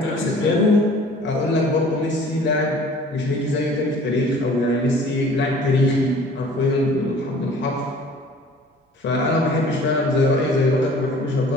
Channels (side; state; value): both; normal; correlation 0.50